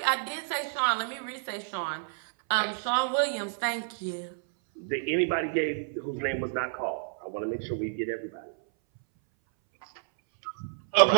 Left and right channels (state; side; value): silent; left; 58 dB below the other